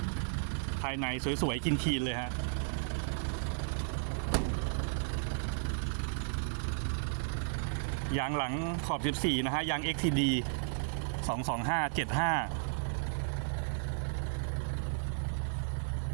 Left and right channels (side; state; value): left; silent; digital silence